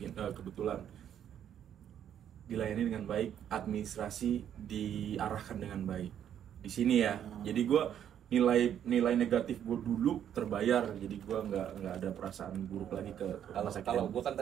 kebetulan dilayani dengan baik, administrasi diarahkan dengan baik. Di sini ya. Jadi gue nilai negatif gue dulu terbayar, jadi gue nggak ada perasaan buruk lagi ke rumah sakit. Kalau gue kan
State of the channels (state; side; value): quieter; left; 9.7 dB